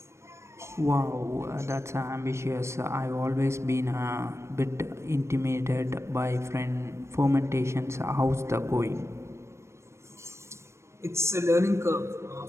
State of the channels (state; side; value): late; left; 0.13 ms